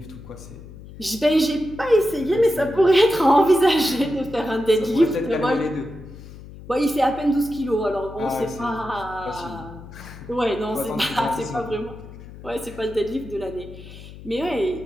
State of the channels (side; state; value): left; noise; hum, 16 dB below the sound